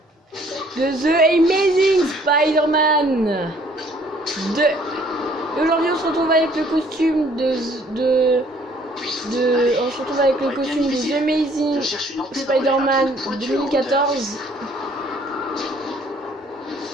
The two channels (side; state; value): both; normal; correlation 0.60